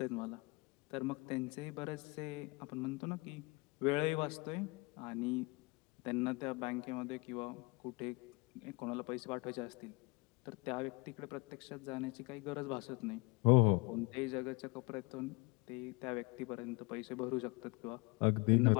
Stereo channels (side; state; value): right; quieter; 27.5 dB